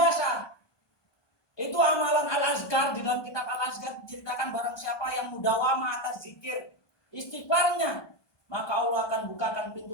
Itu amalan Al-Azkar, di dalam kitab Al-Azkar diceritakan barang siapa yang mudawamah atas zikir istighfarnya, maka Allah akan bukakan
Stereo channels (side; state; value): right; late; 1.2 ms